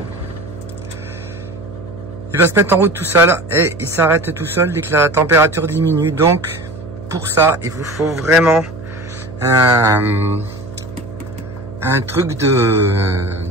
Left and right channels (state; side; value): noise; right; hum, 13 dB below the sound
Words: Il va se mettre en route tout seul et il s'arrête tout seul dès que la température diminue. Donc pour ça, il vous faut vraiment un truc